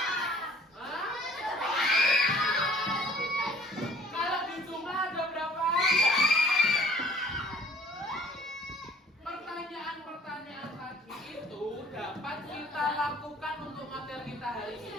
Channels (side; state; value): both; normal; correlation 0.54